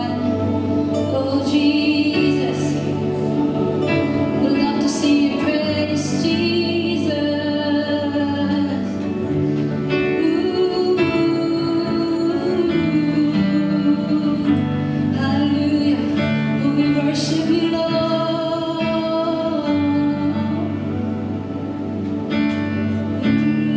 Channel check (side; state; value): both; identical; correlation 1.00